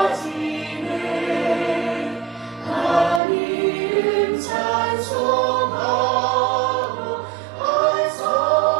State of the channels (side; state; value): left; drops out; at 3.2 s